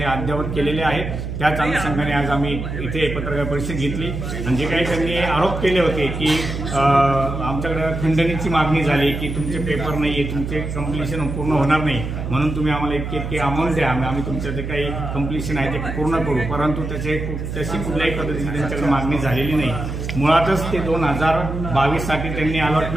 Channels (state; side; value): noise; right; hum, 5 dB below the sound